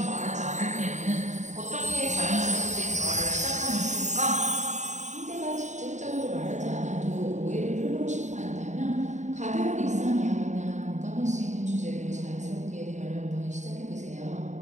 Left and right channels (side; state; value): left; late; 0.34 ms